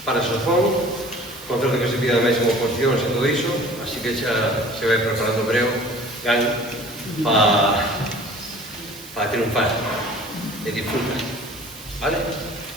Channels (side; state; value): right; noise; hiss, 17 dB below the sound